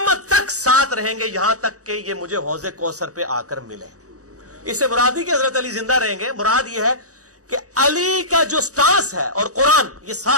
تک ساتھ رہیں گے یہاں تک کہ یہ مجھے حوض کوثر پہ آ کر ملے۔ اس سے مراد ہی کہ حضرت علی زندہ رہیں گے، مراد یہ ہے کہ علی کا جو سٹانس ہے اور قرآن یہ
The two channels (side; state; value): left; late; 0.66 ms